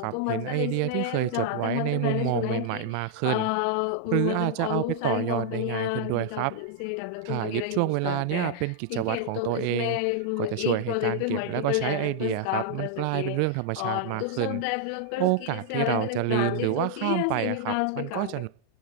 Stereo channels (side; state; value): both; different; correlation -0.01